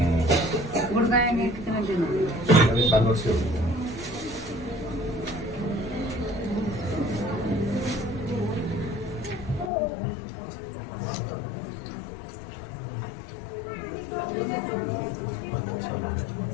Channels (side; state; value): right; drops out; at 9.7 s